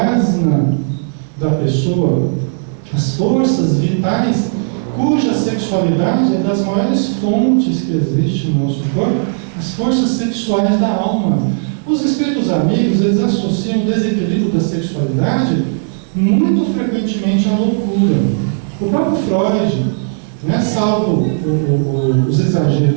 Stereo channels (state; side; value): silent; left; digital silence